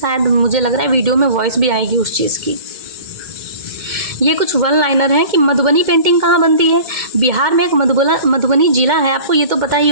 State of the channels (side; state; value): left; late; 2.1 ms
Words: मुझे लग रहा है वीडियो में वॉइस भी आएगी उस चीज़ की। ये कुछ वन लाइनर हैं कि मधुबनी पेंटिंग कहाँ बनती है। बिहार में एक मधुबनी जिला है, आपको ये तो पता ही